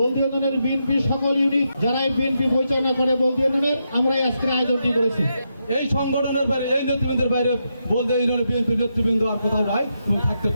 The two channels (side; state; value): both; inverted; correlation -0.83